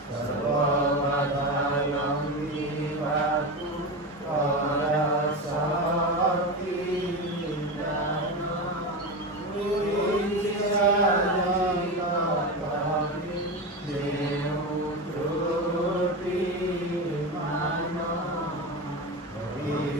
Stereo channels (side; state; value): both; normal; correlation 0.20